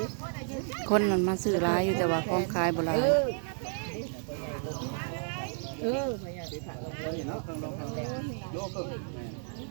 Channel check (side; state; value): left; silent; 56 dB below the other